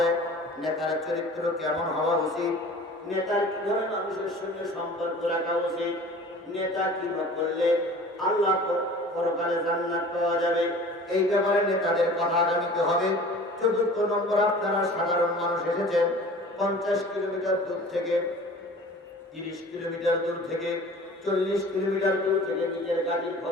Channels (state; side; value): normal; both; correlation 0.43